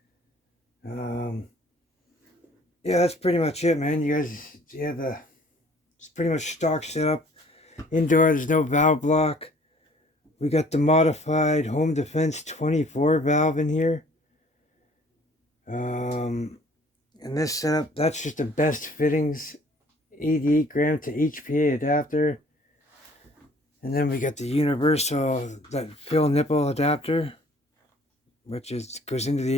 Yeah, that's pretty much it, man. You guys, it's pretty much stock setup. Indoor, there's no valve block. We got the modified Home Defense 24 valve in here. And this setup, that's just the best fittings. 88 gram to HPA adapter. And then we got the universal, that fill nipple adapter, which goes into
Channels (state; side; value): normal; both; correlation 0.55